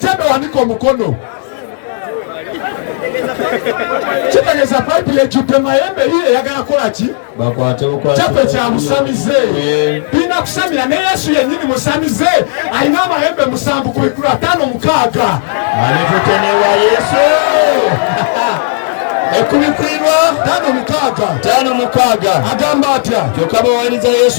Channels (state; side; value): silent; right; digital silence